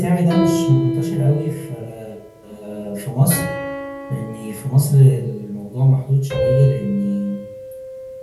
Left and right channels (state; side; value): identical; both; correlation 1.00